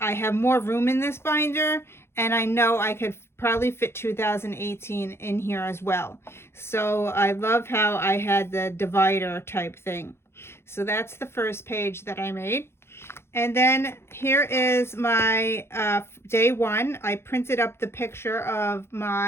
more room in this binder, and I know I could probably fit 2018 in here as well. So I love how I had the divider type thing. So that's the first page that I made. And then here is my day one. I printed up the picture of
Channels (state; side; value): late; right; 0.12 ms